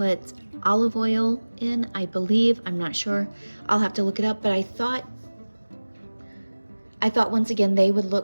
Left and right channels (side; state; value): both; inverted; correlation -1.00